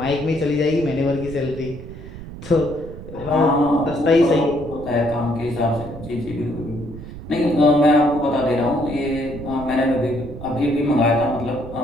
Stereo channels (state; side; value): noise; right; rumble, 13 dB below the sound